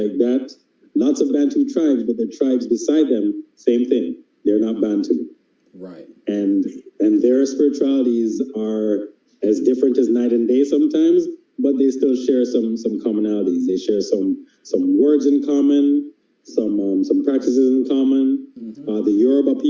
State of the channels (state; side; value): identical; both; correlation 1.00